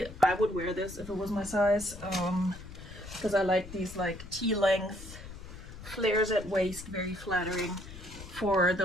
I would wear this if it was my size, because I like these like T-length flares at waist, very flattering for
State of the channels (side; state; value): left; noise; rumble, 14 dB below the sound